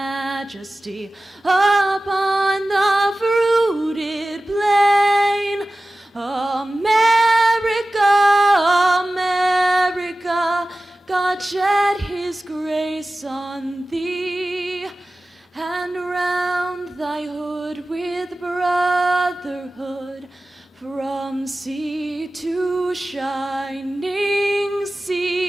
upon the fruited plain. America, America, God shed his grace on thee, and round thy hood with brotherhood, from sea to shining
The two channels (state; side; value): normal; both; correlation 0.96